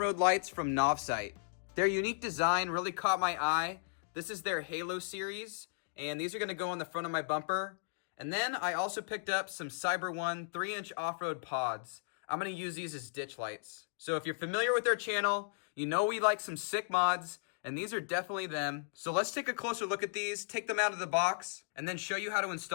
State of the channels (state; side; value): silent; right; digital silence